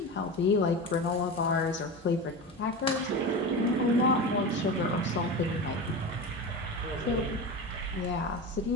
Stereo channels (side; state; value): both; normal; correlation 0.25